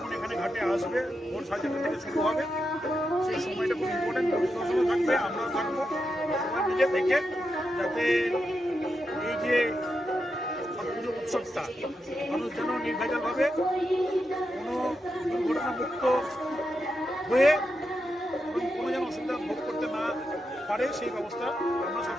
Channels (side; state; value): both; normal; correlation 0.86